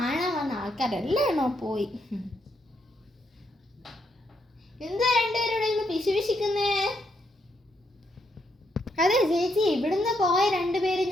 വന്ന ആൾക്കാരെല്ലാണോ പോയി. എന്താ രണ്ടുപേരുടെ പിശുപിശിക്കുന്നേ? അതെ ചേച്ചി, ഇവിടുന്ന് പോയ രണ്ടുപേര്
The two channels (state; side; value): normal; both; correlation 0.78